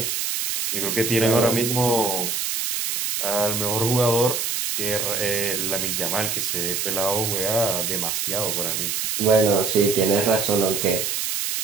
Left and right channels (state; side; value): noise; right; hiss, 1 dB below the sound